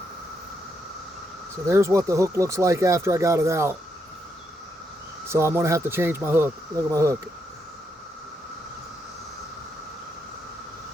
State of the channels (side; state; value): both; normal; correlation 0.79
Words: So there's what the hook looks like after I got it out. So I'm going to have to change my hook. Look at my hook.